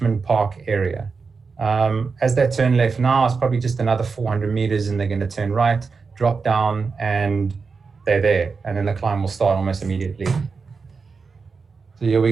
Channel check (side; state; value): left; quieter; 4.9 dB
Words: Park area. As they turn left now, it's probably just another 400 meters, and they're going to turn right, drop down, and they're there. And then the climb will start almost immediately. So here we